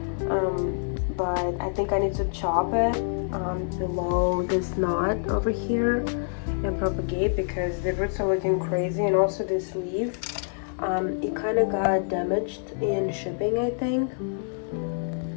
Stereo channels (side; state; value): right; silent; digital silence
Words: but I think I need to chop it below this knot over here and propagate, because the roots are looking crazy. And also this leaf, it kind of got damaged in shipping, I think.